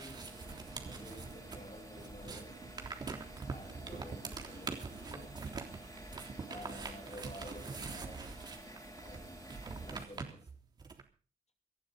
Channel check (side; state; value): left; quieter; 3.2 dB